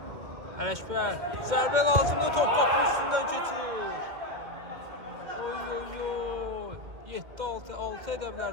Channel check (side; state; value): left; late; 2.1 ms